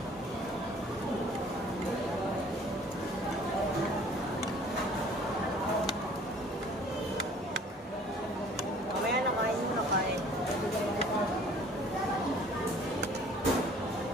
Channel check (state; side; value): normal; both; correlation 0.53